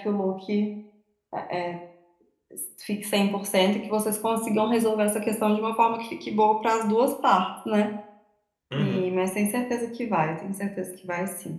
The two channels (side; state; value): both; identical; correlation 1.00